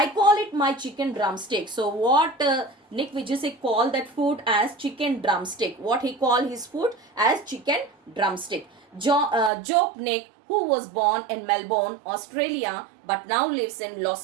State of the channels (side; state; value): left; drops out; at 9.5 s